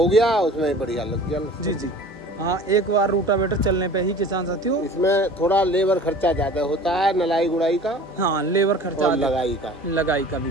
गया, उसमें ही बढ़िया लग गया जी जी। हाँ, एक बार रूटावेटर चलने पे ही किसान साथियों, इसमें थोड़ा लेबर खर्चा ज्यादा होता है, नलाई गुड़ाई का। हाँ, लेबर खर्चा और लगाई का भी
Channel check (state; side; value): normal; both; correlation 0.43